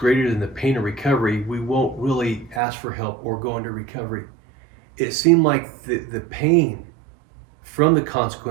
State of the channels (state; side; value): drops out; left; at 2.6 s